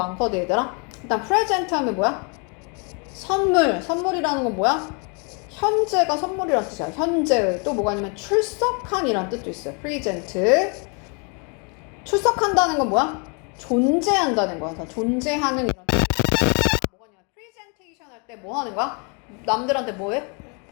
얘들아. 일단 present 하면 뭐야? 선물이라는 건 뭐야? 현재가 선물이라는 뜻이야. 현재의. 또 뭐가 있냐면 출석한이라는 뜻도 있어요. present. 출석한다는 건 뭐야? 존재한다는 거야. 존재하는 이런 뜻. 뭐가 있냐면 presentation 할 때 뭐 하는 거야? 남들한테 뭐해?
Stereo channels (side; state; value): right; quieter; 35.3 dB